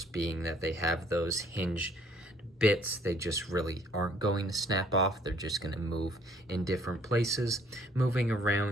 being that they have those hinged bits, they just really aren't going to snap off. They're just going to move in different places. Moving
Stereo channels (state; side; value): normal; both; correlation 0.60